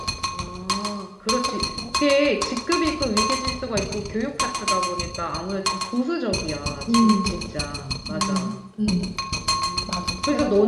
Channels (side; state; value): both; identical; correlation 1.00